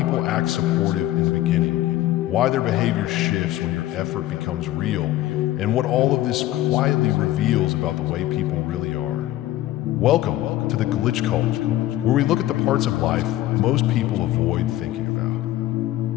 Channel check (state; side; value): quieter; right; 15.0 dB